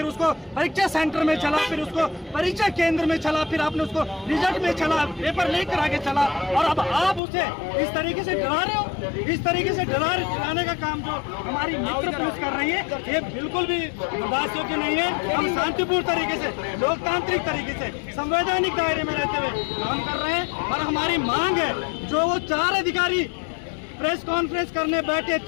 उसको परीक्षा सेंटर में छला, फिर उसको परीक्षा केंद्र में छला, फिर आपने उसको रिजल्ट में छला, पेपर लेकर आगे चला और अब आप उसे इस तरीके से डरा रहे हो। इस तरीके से डराने का काम जो हमारी मित्र पुलिस कर रही है, ये बिल्कुल भी बर्दाश्त योग्य नहीं है। हम शांतिपूर्ण तरीके से, लोकतांत्रिक तरीके से, संवैधानिक दायरे में रहते हुए काम कर रहे हैं और हमारी मांग है, जो वो 4 अधिकारी प्रेस कॉन्फ्रेंस करने बैठे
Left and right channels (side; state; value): right; drops out; at 7.2 s